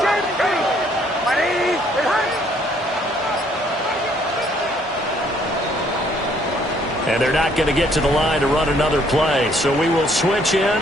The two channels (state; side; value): normal; both; correlation 0.65